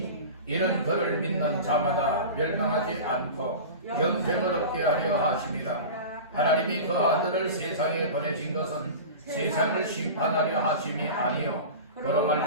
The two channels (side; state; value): both; inverted; correlation -0.32